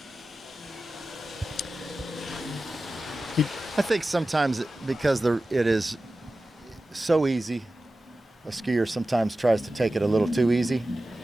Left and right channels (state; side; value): normal; both; correlation 0.95